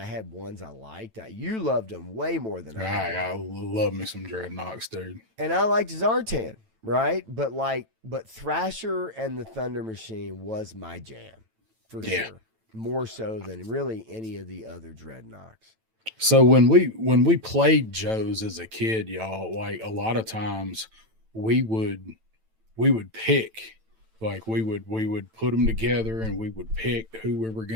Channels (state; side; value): late; left; 9.0 ms